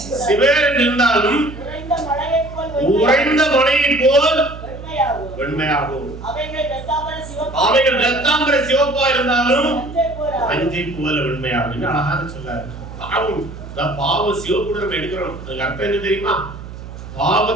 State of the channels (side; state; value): right; noise; hum, 13 dB below the sound